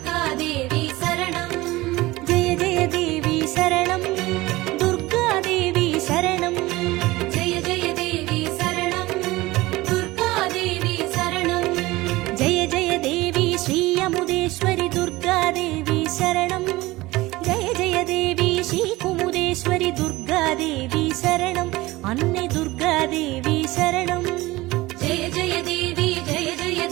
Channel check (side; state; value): left; quieter; 19.6 dB